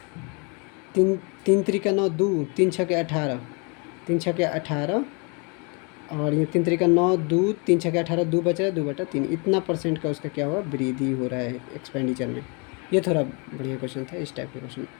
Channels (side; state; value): right; quieter; 33.0 dB